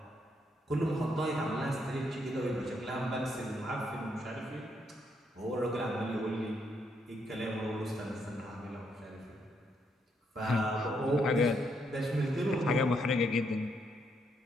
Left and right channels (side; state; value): both; normal; correlation 0.76